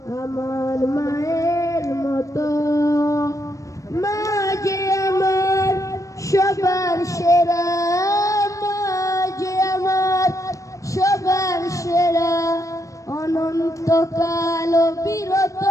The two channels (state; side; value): late; right; 0.16 ms